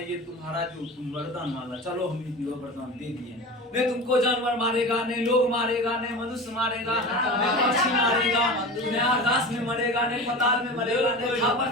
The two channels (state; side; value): normal; both; correlation 0.31